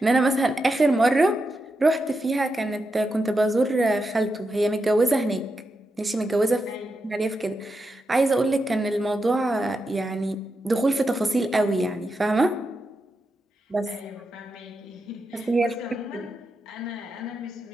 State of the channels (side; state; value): both; normal; correlation 0.87